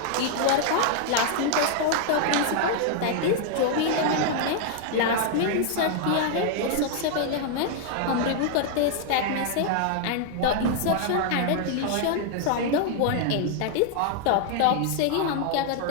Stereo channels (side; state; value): both; different; correlation 0.00